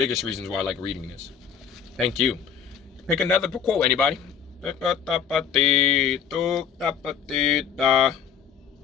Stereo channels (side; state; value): right; quieter; 7.7 dB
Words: reasons why I like reading this. Thank you. Pick another quote, anybody. All